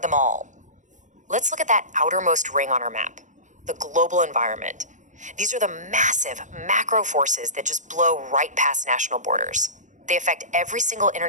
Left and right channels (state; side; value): late; left; 0.36 ms